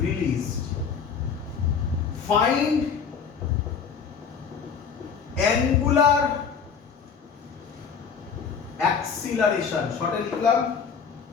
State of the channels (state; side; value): quieter; right; 6.4 dB